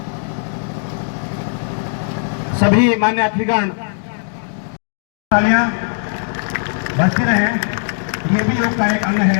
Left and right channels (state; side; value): silent; right; 66 dB below the other